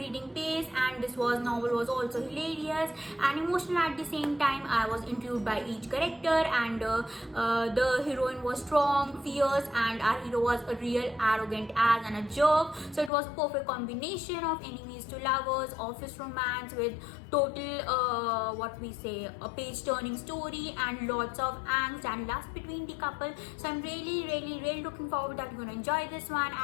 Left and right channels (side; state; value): right; drops out; at 13.1 s